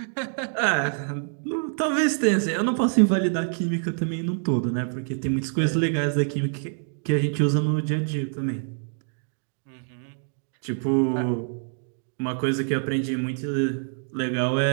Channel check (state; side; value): silent; left; digital silence